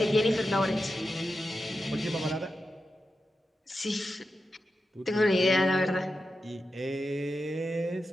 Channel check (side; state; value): both; normal; correlation 0.90